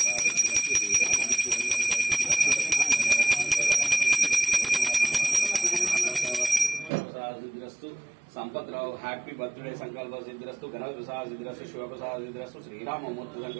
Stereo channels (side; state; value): left; drops out; at 6.9 s